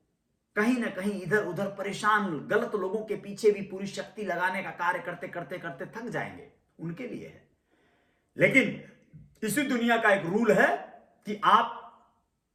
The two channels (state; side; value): identical; both; correlation 1.00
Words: कहीं ना कहीं इधर उधर परेशान, गलत लोगों के पीछे भी पूरी शक्ति लगाने का कार्य करते करते करते थक जाएंगे, उनके लिए है। लेकिन इसी दुनिया का एक रूल है कि आप